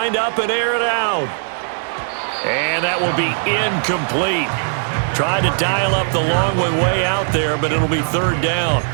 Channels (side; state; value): left; silent; digital silence